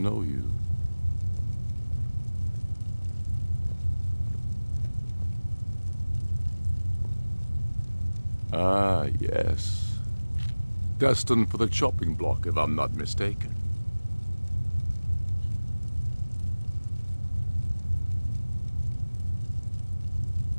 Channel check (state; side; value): inverted; both; correlation -1.00